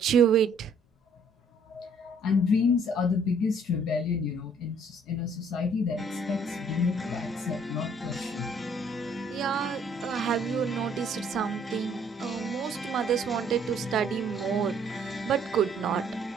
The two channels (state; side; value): normal; both; correlation 0.62